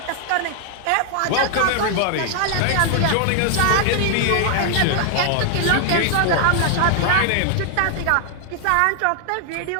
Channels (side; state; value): both; different; correlation 0.00